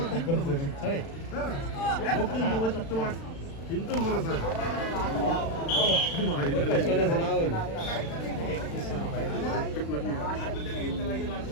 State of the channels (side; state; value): right; late; 36 ms